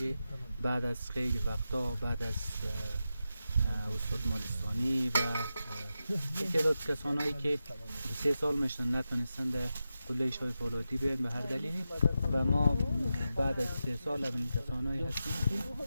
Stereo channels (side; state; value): both; inverted; correlation -0.90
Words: بعد از خیلی وقتا، بعد از استاد مالستانی و تعداد کسانایی که 3 سال میشن نتونستن در قلعه شایفولادی بیاین به هر دلیلی و ما بعد از 3 سال اولین کسانایی هستیم